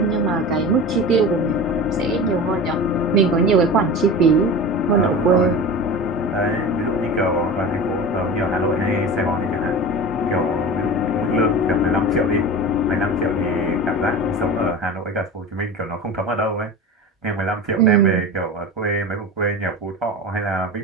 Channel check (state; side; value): normal; both; correlation 0.31